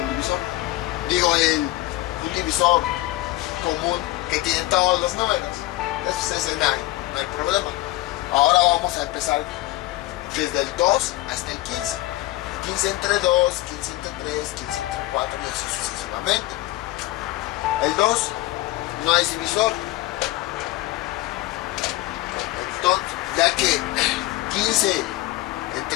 divisor. Digo, un divisor común que tiene todos los números. Ese no hay problema. Ahora vamos a empezar desde el 2 hasta el 15. 15 entre 2, 15 entre 3, 15 entre 4 y así sucesivamente. El 2 no es divisor. Entonces, ya que 15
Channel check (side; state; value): right; quieter; 17.9 dB